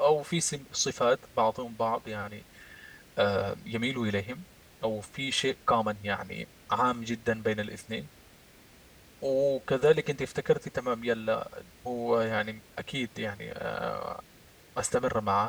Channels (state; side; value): identical; both; correlation 1.00